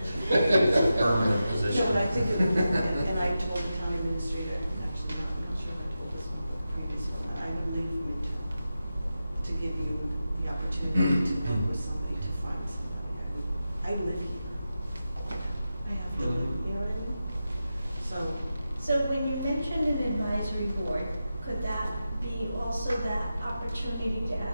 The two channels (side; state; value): both; inverted; correlation -0.91